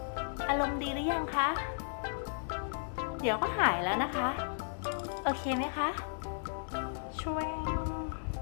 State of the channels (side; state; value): right; silent; digital silence